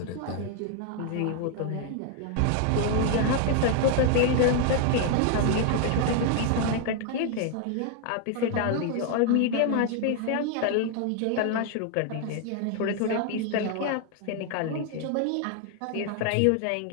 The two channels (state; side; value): different; both; correlation 0.00